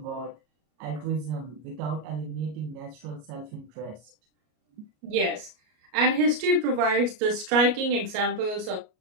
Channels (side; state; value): left; late; 33 ms